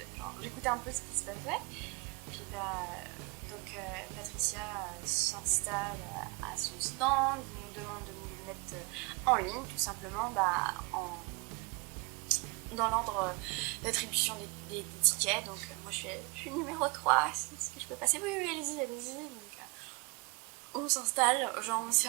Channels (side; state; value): left; quieter; 29.5 dB